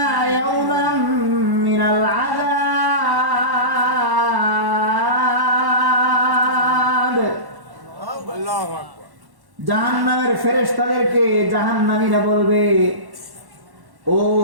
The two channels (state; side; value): late; left; 1.1 ms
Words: ইয়াওমান মিনাল আযাব। আল্লাহু আকবার। জাহান্নামের ফেরেশতাদেরকে জাহান্নামীরা বলবে, ও